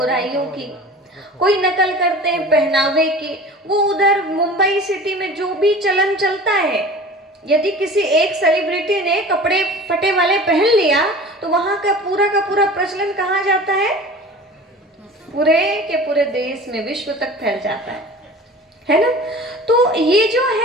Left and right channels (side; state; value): both; normal; correlation 0.39